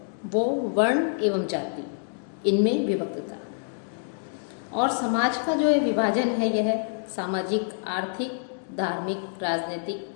वो वर्ण एवं जाति इनमें विभक्त था। और समाज का जो विभाजन है यह सामाजिक, आर्थिक, धार्मिक,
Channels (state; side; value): silent; right; digital silence